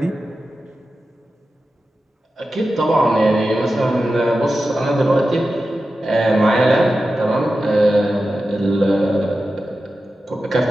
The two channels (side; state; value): both; normal; correlation 0.92